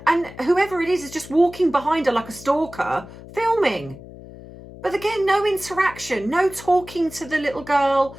And whoever it is just walking behind her like a stalker, filming. But again, no interaction, no talking to the little girl,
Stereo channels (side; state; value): left; noise; hum, 16 dB below the sound